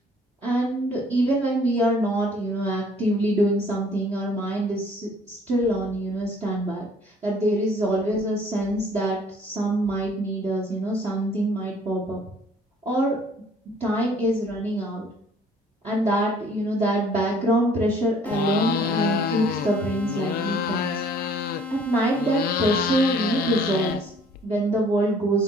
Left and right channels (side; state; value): both; normal; correlation 0.57